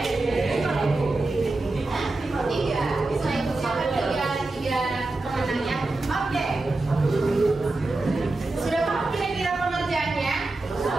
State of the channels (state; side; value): quieter; left; 3.1 dB